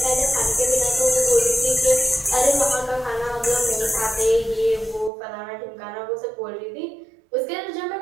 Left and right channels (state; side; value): drops out; left; at 5.1 s